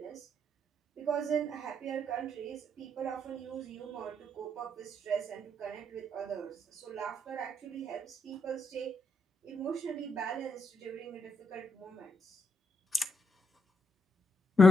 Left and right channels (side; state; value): both; normal; correlation 0.79